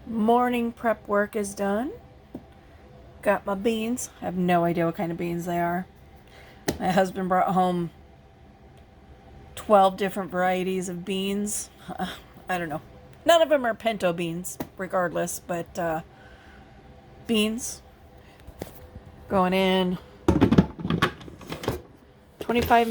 Morning prep work is done. Got my beans. I have no idea what kind of beans they are. My husband brought home 12 different varieties of beans. I don't know. None of them are pinto beans, regardless, but beans going in 25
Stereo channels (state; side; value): identical; both; correlation 1.00